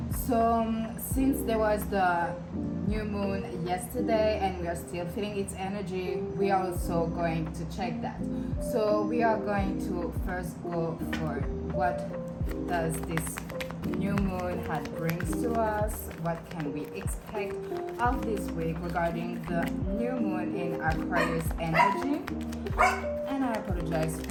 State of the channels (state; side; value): identical; both; correlation 1.00